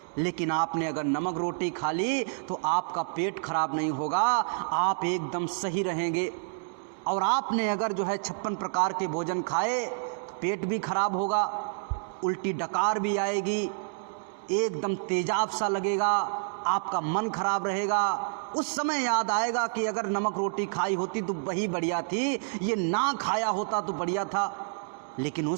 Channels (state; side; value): silent; left; digital silence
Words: लेकिन आपने अगर नमक रोटी खा ली तो आपका पेट खराब नहीं होगा, आप एकदम सही रहेंगे। और आपने अगर जो है 56 प्रकार के भोजन खाए, पेट भी खराब होगा, उल्टी डकार भी आएगी, एकदम तेजाब सा लगेगा, आपका मन खराब रहेगा। उस समय याद आएगा कि अगर नमक रोटी खाई होती तो वही बढ़िया थी, ये ना खाया होता तो बढ़िया था। लेकिन